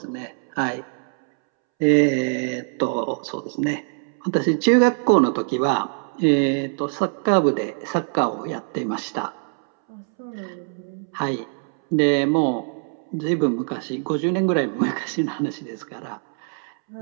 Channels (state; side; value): silent; left; 63 dB below the other